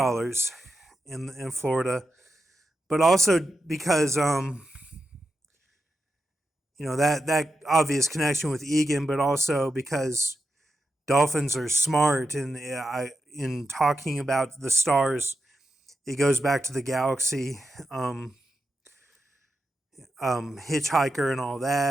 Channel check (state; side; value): normal; both; correlation 0.88